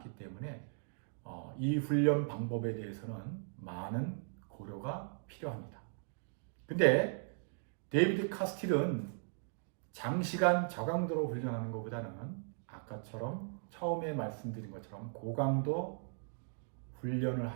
때문에 이 훈련 방법에 대해서는 많은 고려가 필요합니다. 근데 데이비드 카스틸은 장시간 저강도로 훈련하는 것보다는 아까처럼 처음에 말씀드린 것처럼 고강도 훈련을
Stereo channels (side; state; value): left; silent; digital silence